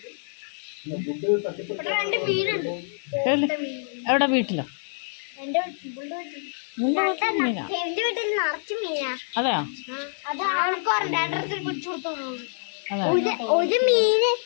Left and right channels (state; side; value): silent; right; 61 dB below the other